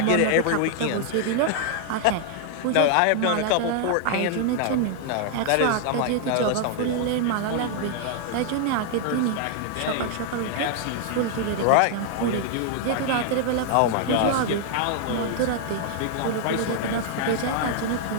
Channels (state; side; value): different; both; correlation 0.00